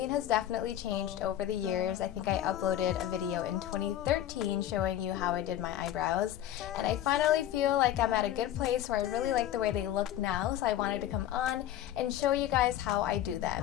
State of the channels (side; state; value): right; quieter; 12.0 dB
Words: has definitely changed over the years. I think I uploaded a video in 2013 showing you how I did my eyebrows, and I finally feel like I'm at a good place where I really like the way they look now, so I wanted to come on and show you guys how I do